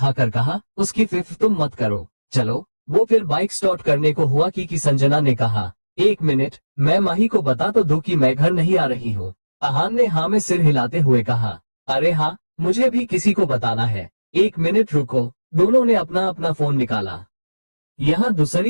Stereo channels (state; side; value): inverted; both; correlation -1.00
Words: कहा, उसकी फिक्र तुम मत करो, चलो। वो फिर बाइक स्टार्ट करने को हुआ कि संजना ने कहा, 1 मिनट, मैं माही को बता तो दो कि मैं घर नहीं आ रही हूँ। अहान ने हाँ में सिर हिलाते हुए कहा, अरे हाँ, मुझे भी किसी को बताना है। 1 मिनट रुको। दोनों ने अपना अपना फोन निकाला। यहाँ